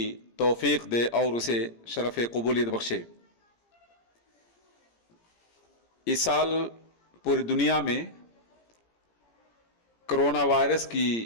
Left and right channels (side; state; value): right; late; 17 ms